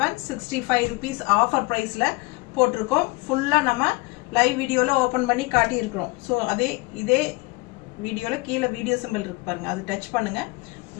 ருபீஸ் ஆஃபர் ப்ரைஸில் போட்டிருக்கோம். ஃபுல்லாக நம்ம லைவ் வீடியோவில் ஓப்பன் பண்ணி காட்டியிருக்கிறோம். ஸோ இதே வீடியோவில் கீழே வீடியோ சிம்பிள் இருக்கு பாருங்க, அது டச் பண்ணுங்க.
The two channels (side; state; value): right; quieter; 24.5 dB